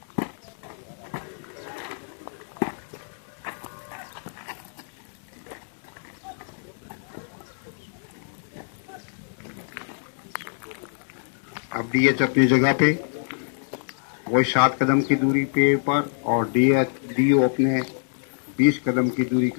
अब डीएच अपनी जगह पे वही 7 कदम की दूरी पे पर, और डीओ अपने 20 कदम की दूरी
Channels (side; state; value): right; silent; digital silence